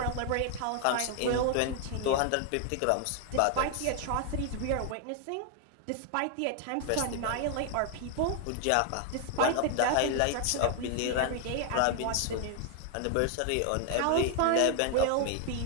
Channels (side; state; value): both; different; correlation 0.00